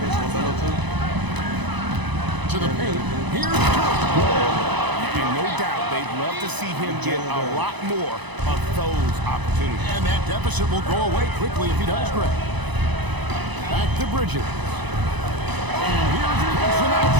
To the paint. Here's And no doubt, they'd love to see him get a lot more of those opportunities. And that deficit will go away quickly if he does, Greg. Back to Bridges. And here's Wilson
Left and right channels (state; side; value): late; left; 1.0 ms